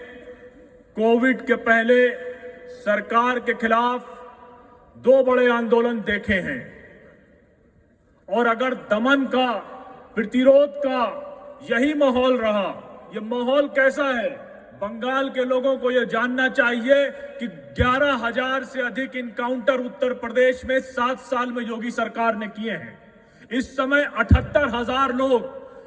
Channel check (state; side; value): identical; both; correlation 1.00